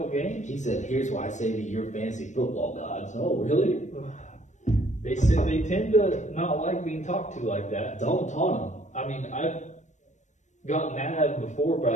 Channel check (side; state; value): right; late; 0.35 ms